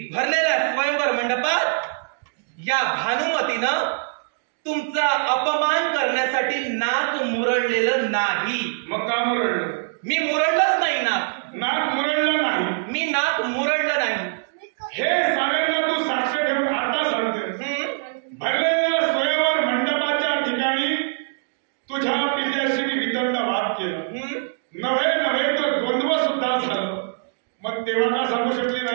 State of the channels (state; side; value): silent; left; digital silence